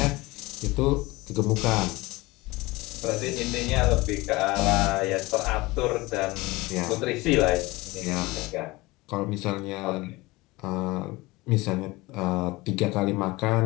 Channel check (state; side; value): quieter; right; 21.6 dB